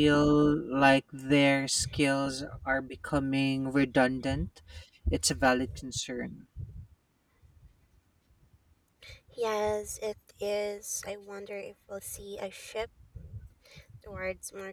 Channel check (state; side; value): identical; both; correlation 1.00